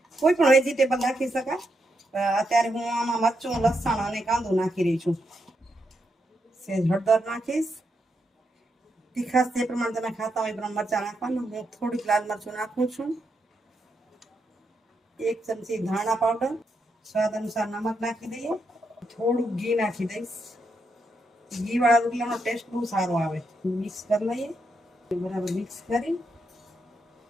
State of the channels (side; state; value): both; normal; correlation 0.82